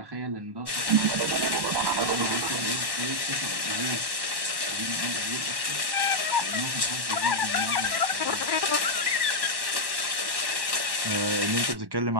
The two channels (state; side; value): late; left; 1.1 ms